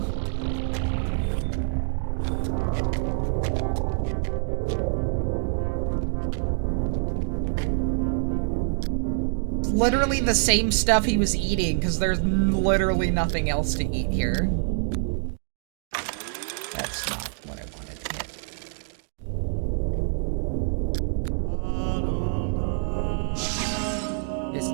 Literally the same stuff he was eating, because there's literally nothing else to eat here. That's not what I wanted to hit. This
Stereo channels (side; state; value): left; silent; digital silence